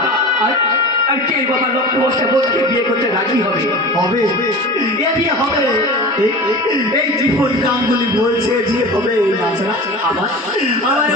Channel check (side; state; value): both; normal; correlation 0.33